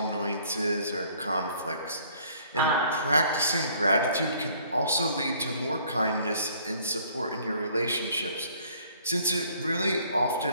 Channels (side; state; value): both; inverted; correlation -0.59